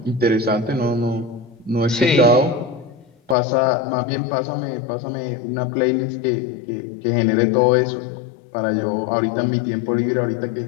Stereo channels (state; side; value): drops out; right; at 3.4 s